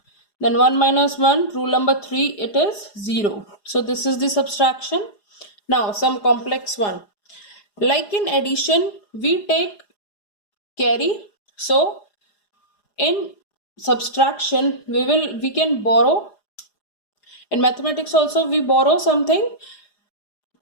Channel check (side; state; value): right; late; 4.9 ms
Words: Then 1 minus 1, rule number 3, it is 0. So this is the subtraction. Now some complex one. Like in addition, we take carry. So in subtraction, we can borrow. In mathematics also we borrow something.